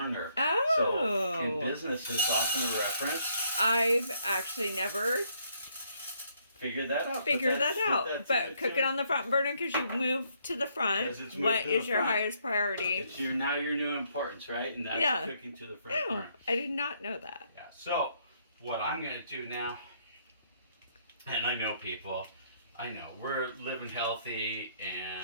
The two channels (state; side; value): inverted; both; correlation -0.70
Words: Oh. So in business, it's often a reference. I've actually never figured that out. But cook it on the front burner because you move to the front. What is your highest priority? It's now your new importance, right? And that's cooking to the front burner. I did not know that. Yeah. So what I'm going to do now, and I know people, we're living healthy